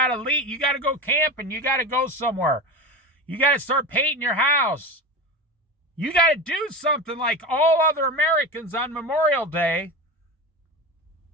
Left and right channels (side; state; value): both; normal; correlation 0.25